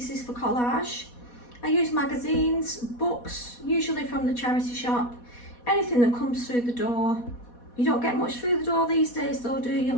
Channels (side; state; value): right; late; 4.2 ms